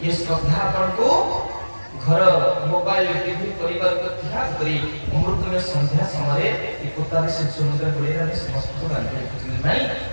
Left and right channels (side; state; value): both; inverted; correlation -1.00